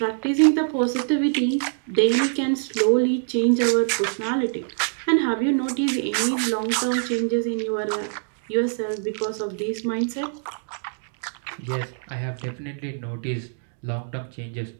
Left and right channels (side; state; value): left; silent; digital silence